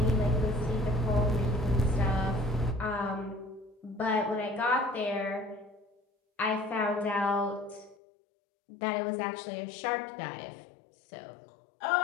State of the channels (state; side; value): drops out; right; at 8.0 s